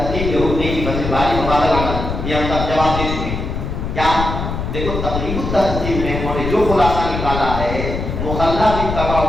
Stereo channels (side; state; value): left; noise; rumble, 4 dB below the sound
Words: کے حکم کی فصل باری مبادلہ کرنا، یہ ہم تک جواب دے چکے ہیں. کیا دیکھو تقریب التحقیق میں انہوں نے جو خلاصہ نکالا ہے مخلہ بھی تباہ